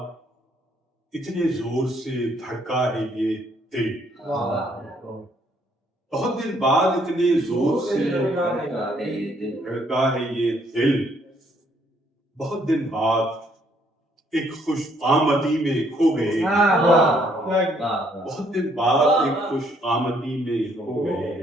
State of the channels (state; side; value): normal; both; correlation 0.67